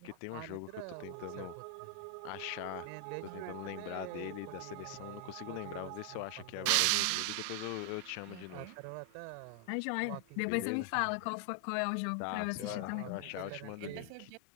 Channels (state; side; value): different; both; correlation 0.00